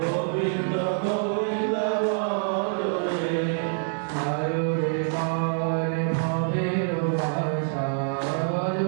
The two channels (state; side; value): silent; left; 61 dB below the other